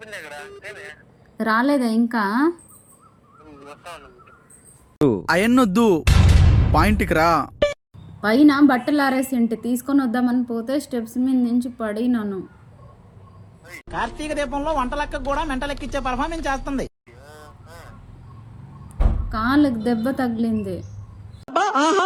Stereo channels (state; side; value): identical; both; correlation 1.00